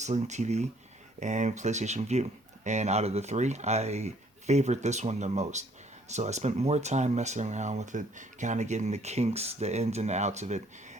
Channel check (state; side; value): normal; both; correlation 0.62